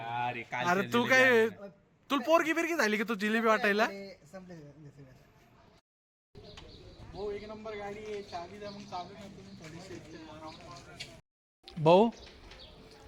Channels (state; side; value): identical; both; correlation 1.00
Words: काय अरे तू काय, तुला पोरगी बिरगी झाली की तू जिलेबी वाटायला? भाऊ एक नंबर गाडी आहे, चावी द्या मग. चावी भाऊ